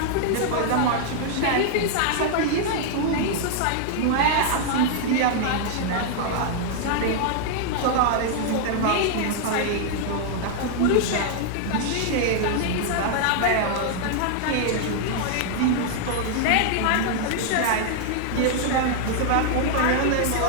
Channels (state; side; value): different; both; correlation -0.01